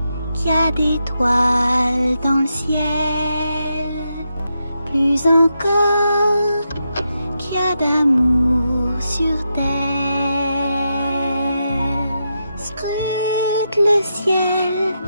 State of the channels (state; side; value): inverted; both; correlation -0.85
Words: qu'il y a des toiles dans le ciel. Plus encore qu'il y a d'amour sur terre. Scrute le ciel,